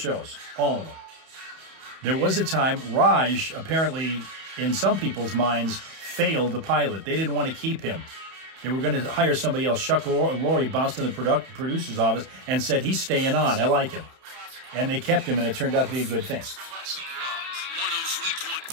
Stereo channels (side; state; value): left; late; 31 ms